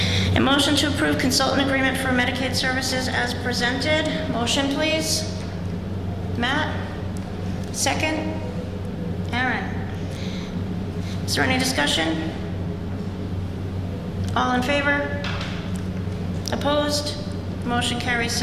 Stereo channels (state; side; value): identical; both; correlation 1.00